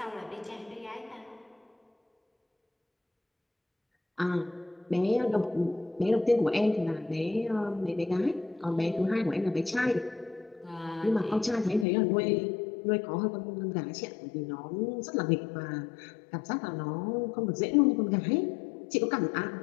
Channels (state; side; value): drops out; right; at 11.9 s